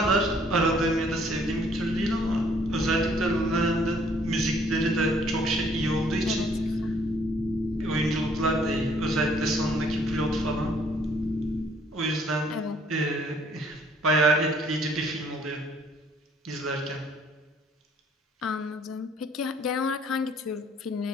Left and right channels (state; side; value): normal; both; correlation 0.62